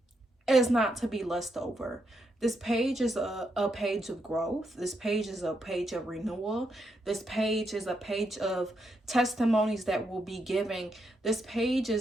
is not to be lust over. This page is a page of growth. This page is a page of renewal. This page is a page of testimonies that will be giving. This page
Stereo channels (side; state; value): both; normal; correlation 0.80